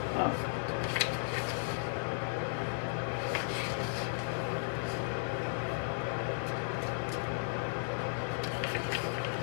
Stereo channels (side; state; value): right; silent; digital silence